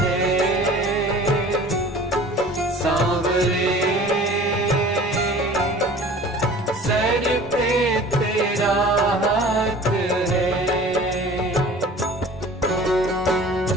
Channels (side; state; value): both; normal; correlation 0.45